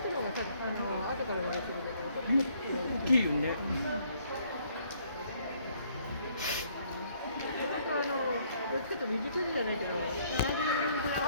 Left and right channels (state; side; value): inverted; both; correlation -0.65